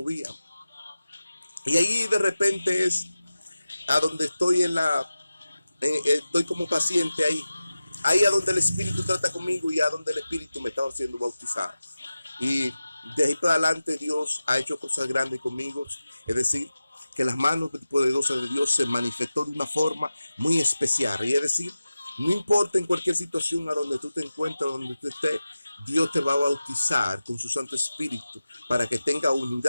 Y ahí de repente es a donde estoy estoy como paciente ahí a donde el espíritu trata conmigo y a donde el espíritu me estaba haciendo bautizar. Y de ahí para adelante Dios ha hecho cosas grandes conmigo. Es decir, que las manos poderosas de Dios se manifestó de una forma muy especial. Y es decir, no importa en cualquier situación a donde tú te encuentres, donde tú estés, Dios te va a bautizar con su Santo Espíritu para que tenga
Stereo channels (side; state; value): both; inverted; correlation -0.95